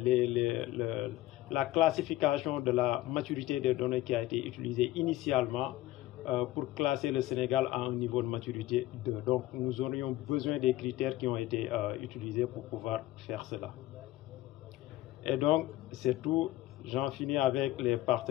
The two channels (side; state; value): right; quieter; 15.9 dB